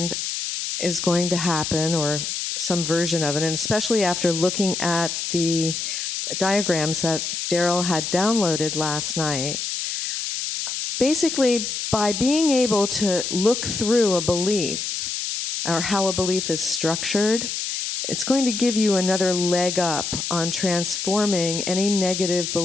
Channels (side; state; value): left; noise; hiss, 3 dB below the sound